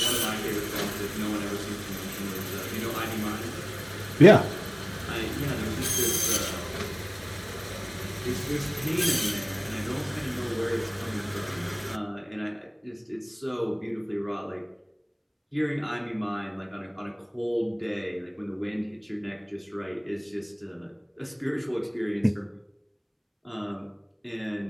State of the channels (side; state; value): both; identical; correlation 1.00